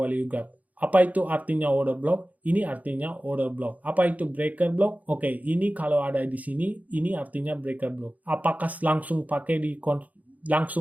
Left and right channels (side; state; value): left; late; 0.076 ms